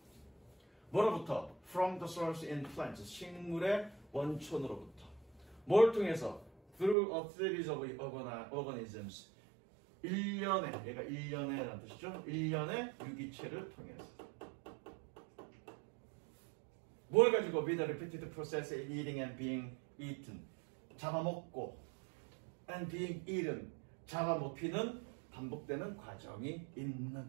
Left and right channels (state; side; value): drops out; left; at 7.0 s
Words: 뭐로부터? From the source in plants. 식물의 원촌으로부터. 뭘 통해서? Through a series of organisms. 일련의, 얘가 일련의라는 뜻이죠. 일련의 유기체를 통해서. 뭘 가지고? With a repeated process in eating and being eaten. 잡아먹고 and being eaten. 잡아먹히는 반복되는 과정이